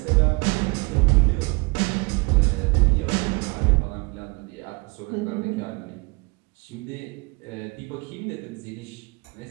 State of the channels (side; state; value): left; quieter; 27.6 dB